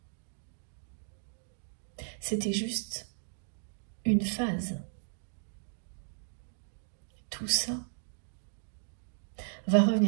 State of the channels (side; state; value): left; silent; digital silence